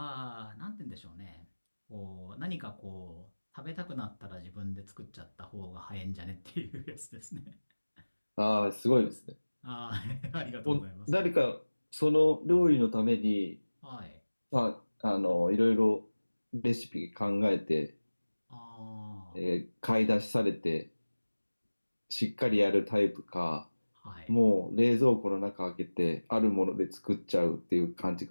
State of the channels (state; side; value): inverted; both; correlation -1.00